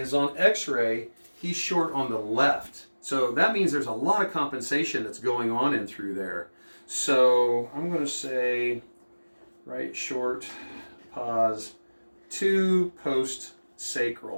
on x-ray, he's short on the left. So that means there's a lot of compensation that's going on in through there. So I'm going to say right short, pause, to post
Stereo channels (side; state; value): both; inverted; correlation -1.00